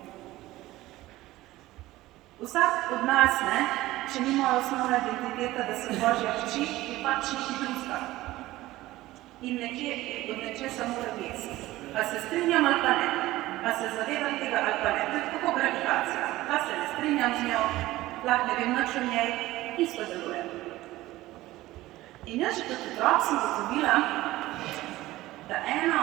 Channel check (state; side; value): quieter; left; 17.1 dB